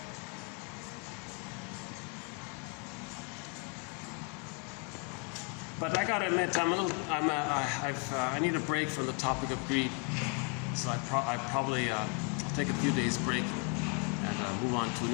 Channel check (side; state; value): right; quieter; 29.9 dB